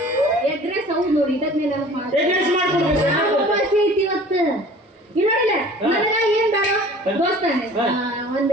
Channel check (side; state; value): both; normal; correlation 0.46